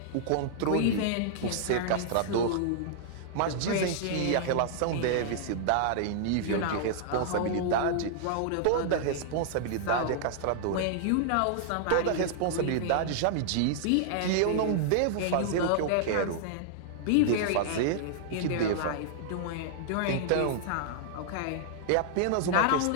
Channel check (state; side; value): different; both; correlation -0.01